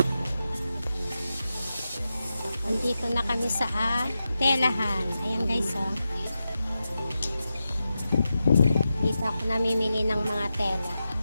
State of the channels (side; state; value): both; inverted; correlation -0.90